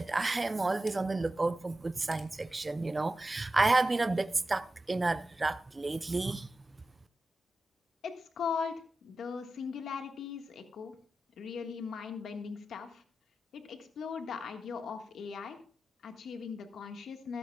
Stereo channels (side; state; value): both; normal; correlation 0.93